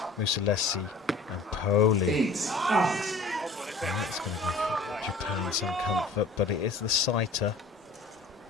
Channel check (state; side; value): quieter; right; 3.3 dB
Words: Mussolesi and Poli. And that's going to give Japan some comfort, but it is the sighter.